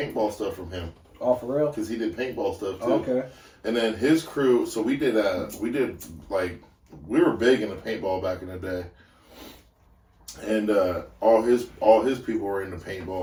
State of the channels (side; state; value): both; identical; correlation 1.00